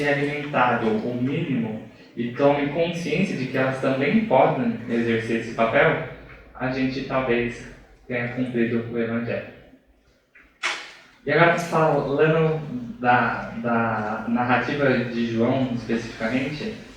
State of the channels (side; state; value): both; identical; correlation 1.00